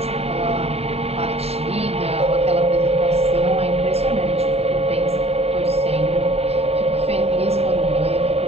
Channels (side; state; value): left; late; 0.29 ms